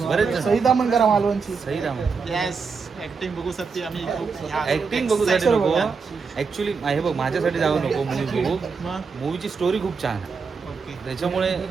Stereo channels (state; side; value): quieter; left; 5.2 dB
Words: बरेच जण. सईदा मंगरा मालवणची. सही राम. येस. ऍक्टिंग बघू शकते आम्ही. ऍक्टिंग बघूसाठी नको ऍक्च्युली. हे बघ, माझ्यासाठी जाऊ नको मूवी बघू. मूवीची स्टोरी खूप छान आहे, ओके. त्याच्यामुळे